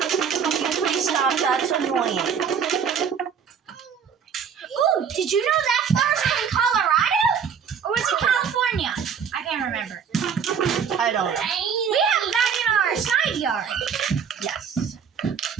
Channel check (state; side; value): quieter; left; 7.1 dB